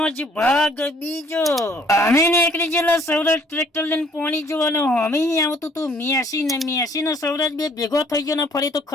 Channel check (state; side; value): normal; both; correlation 0.60